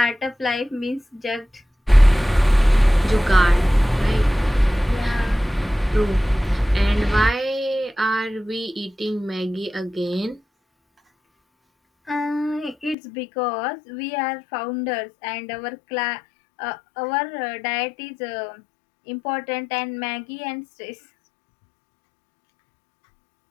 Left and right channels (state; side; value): drops out; right; at 13.0 s